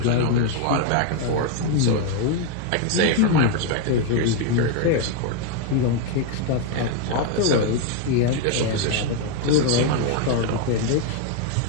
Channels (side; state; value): both; different; correlation 0.01